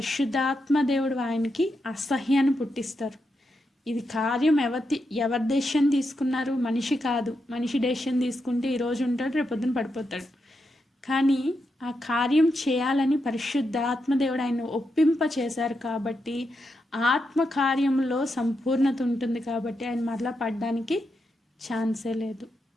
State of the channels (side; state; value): both; normal; correlation 0.85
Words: దేవుడు ఆయనకి అసహ్యాన్ని పుట్టిస్తారు. ఇది కార్యం ఎవరి డెసిషన్ తీసుకున్నారు? మనిషి కాదు. మనిషి డెసిషన్ తీసుకుంటే ఈరోజు ఉంటాడు, రేపొద్దున పడిపోతాడు. కానీ ఆ కార్యం చేయాలని పరిశుద్ధాత్మ దేవుడు ఆయన ఒప్పింప చేశారు కాబట్టి, ఆత్మ కార్యంలో సంపూర్ణత ఉంటుంది కాబట్టి ఆయన మరలా పడడానికి ఛాన్సే లేదు.